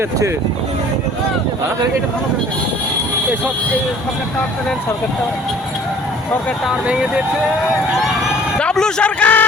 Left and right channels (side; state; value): both; normal; correlation 0.51